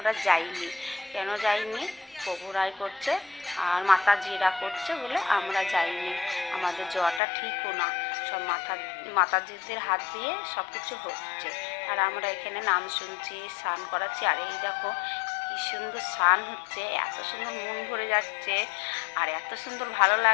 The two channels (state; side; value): drops out; right; at 7.2 s